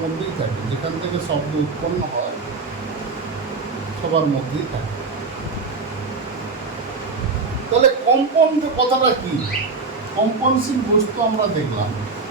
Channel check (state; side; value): quieter; left; 4.2 dB